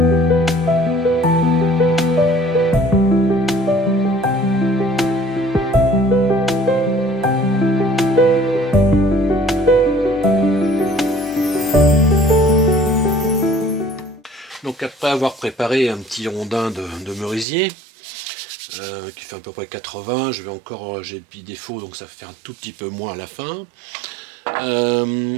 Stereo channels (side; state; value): left; drops out; at 17.4 s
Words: Donc après avoir préparé un petit rondin de merisier, qui fait à peu près 80, j'ai le petit défaut, donc ça fait un tout petit peu moins à la fin.